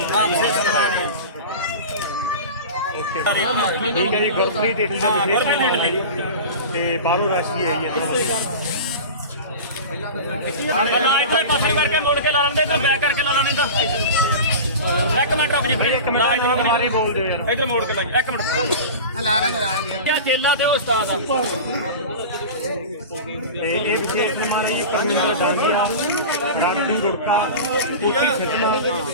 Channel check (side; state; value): both; inverted; correlation -0.31